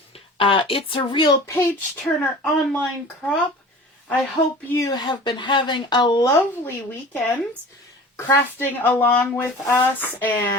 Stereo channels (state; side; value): normal; both; correlation 0.41